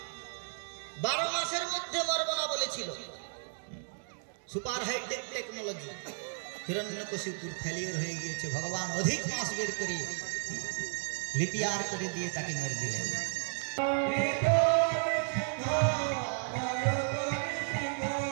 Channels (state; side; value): silent; left; 56 dB below the other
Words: 12 মাসের মধ্যে মরব না বলেছিল। Super hi-tech technology. হিরণ্যকশিপুর ফেলিওর হয়ে গিয়েছে, ভগবান অধিক মাস বের করে লিপিয়ার করে দিয়ে তাকে মেরে দিলেন।